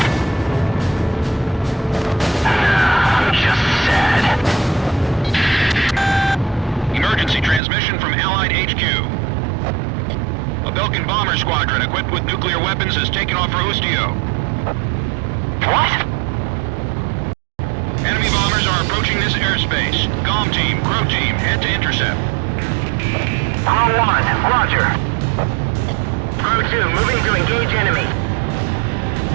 I'm just sad. Emergency transmission from Allied HQ. A Belkan bomber squadron equipped with nuclear weapons has taken off for Ustio. What? Enemy bombers are approaching this airspace. Golem Team, Crow Team, head to intercept. Crow 1, roger. Crow 2, moving to engage enemy.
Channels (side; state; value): left; drops out; at 7.6 s